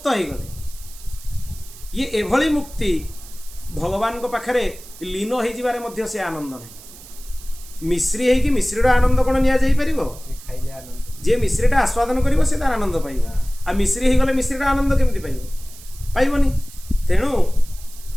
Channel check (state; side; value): noise; right; hiss, 18 dB below the sound